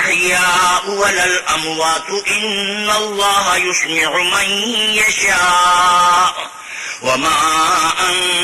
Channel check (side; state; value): both; identical; correlation 1.00